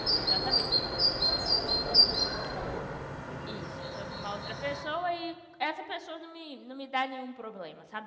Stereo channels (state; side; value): identical; both; correlation 1.00